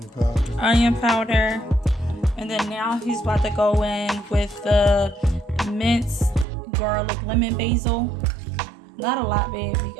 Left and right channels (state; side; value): drops out; left; at 6.5 s